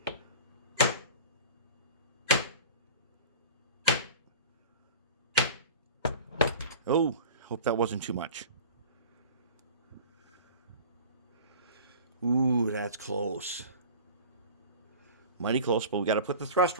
Oh, hope that wasn't too much. Ooh, that's close. Mighty close, but we got to put the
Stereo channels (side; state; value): both; inverted; correlation -0.37